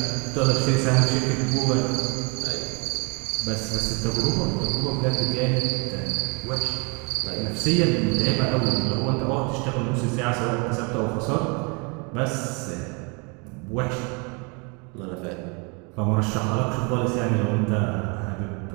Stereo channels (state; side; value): quieter; left; 32.3 dB